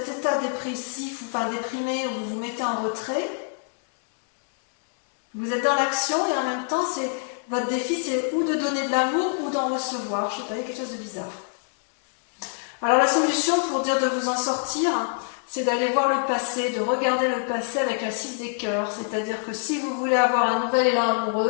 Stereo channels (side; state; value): right; silent; 61 dB below the other